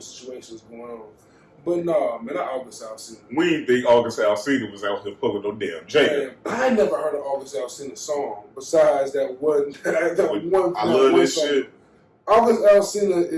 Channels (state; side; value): identical; both; correlation 1.00